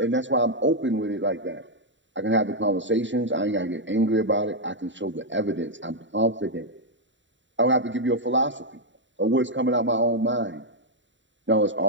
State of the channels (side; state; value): left; late; 0.54 ms